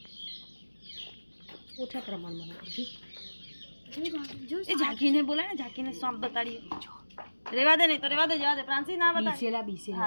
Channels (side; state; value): both; inverted; correlation -1.00